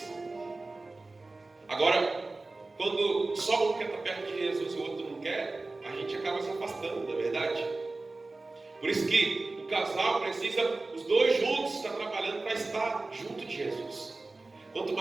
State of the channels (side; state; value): left; quieter; 3.3 dB